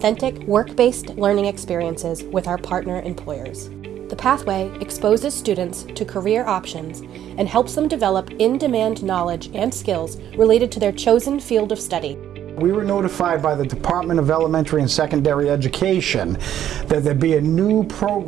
work-based learning experiences with our partner employers. The pathway exposes students to career options and helps them develop in-demand knowledge and skills related to their chosen field of study. We were notified by the Department of Elementary and Secondary Education that there'd be a new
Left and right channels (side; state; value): left; quieter; 10.9 dB